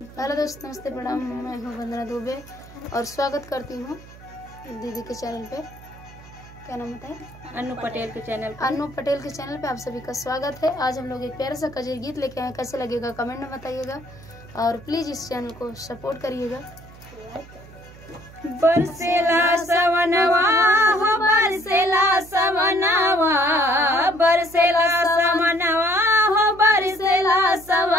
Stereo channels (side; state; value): right; noise; hum, 20 dB below the sound